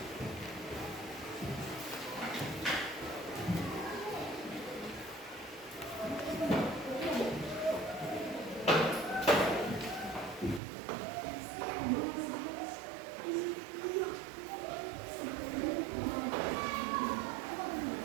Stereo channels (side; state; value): left; drops out; at 10.6 s